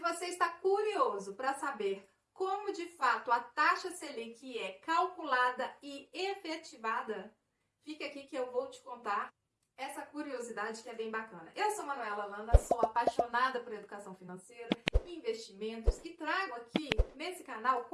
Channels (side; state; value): both; identical; correlation 1.00